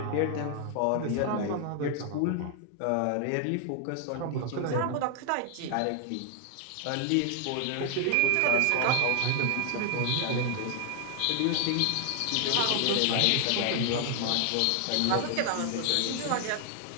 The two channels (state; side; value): different; both; correlation 0.00